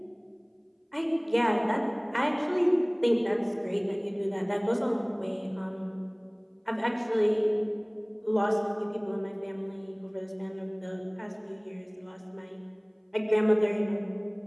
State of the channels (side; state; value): both; identical; correlation 1.00